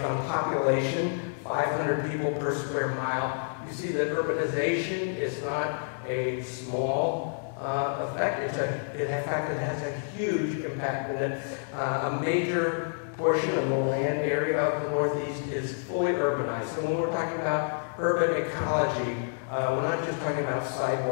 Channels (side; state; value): right; silent; 59 dB below the other